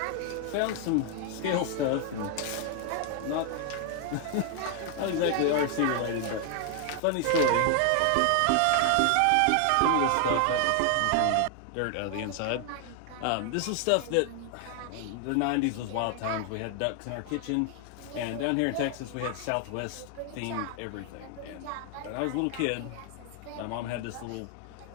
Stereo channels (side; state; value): both; different; correlation 0.00